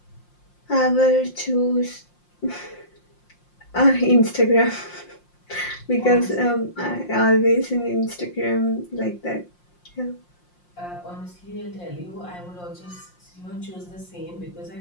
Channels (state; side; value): late; right; 5.7 ms